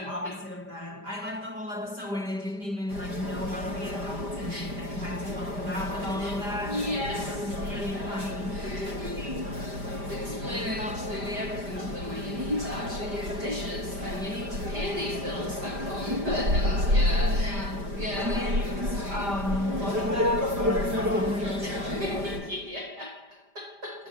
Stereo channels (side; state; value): left; late; 5.0 ms